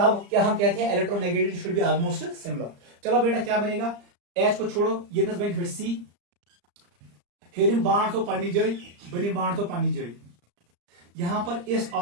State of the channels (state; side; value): late; left; 34 ms